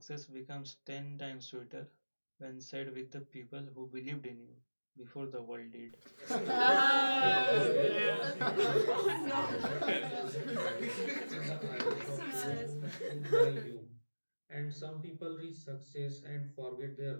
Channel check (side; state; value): both; inverted; correlation -1.00